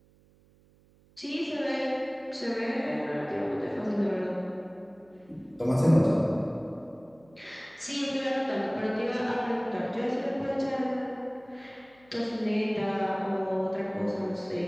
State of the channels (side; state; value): right; noise; hum, 30 dB below the sound